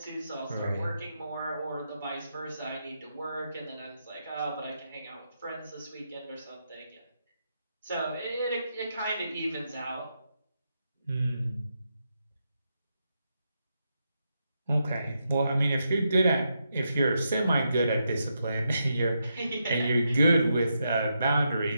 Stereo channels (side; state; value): both; inverted; correlation -0.83